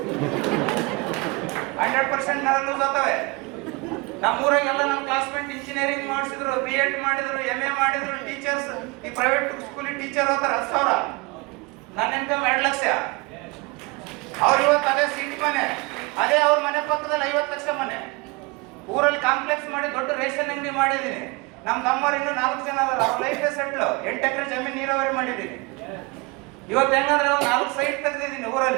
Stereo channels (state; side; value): quieter; left; 26.7 dB